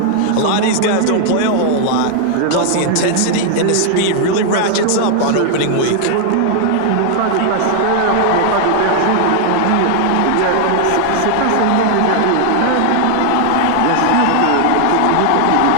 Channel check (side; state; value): both; different; correlation 0.00